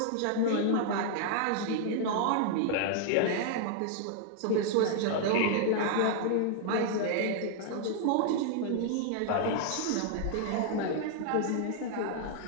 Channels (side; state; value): both; different; correlation -0.01